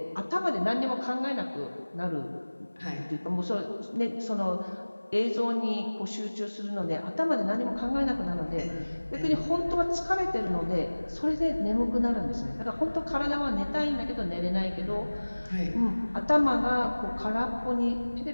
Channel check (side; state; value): both; inverted; correlation -1.00